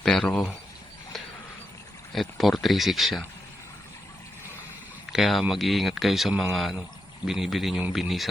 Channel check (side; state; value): both; normal; correlation 0.85